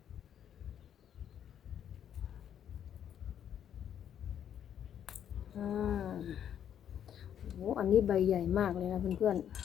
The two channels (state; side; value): quieter; right; 9.5 dB